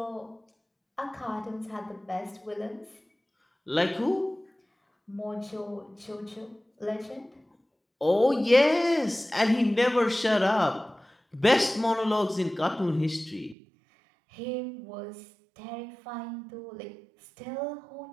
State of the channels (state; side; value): drops out; left; at 13.6 s